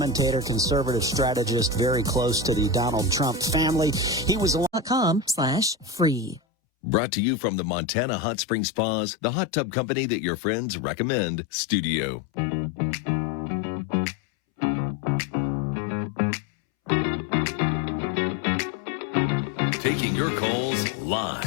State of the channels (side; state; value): right; drops out; at 6.4 s